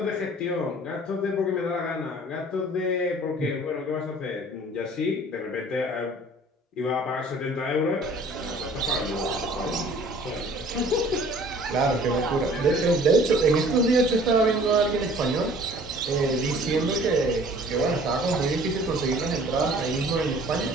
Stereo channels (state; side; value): normal; both; correlation 0.51